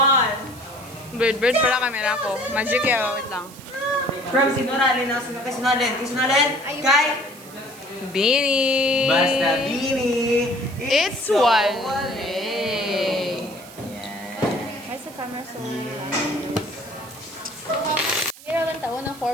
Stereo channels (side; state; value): right; noise; hiss, 19 dB below the sound